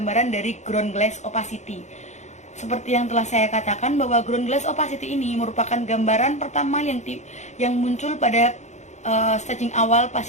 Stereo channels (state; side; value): late; right; 0.34 ms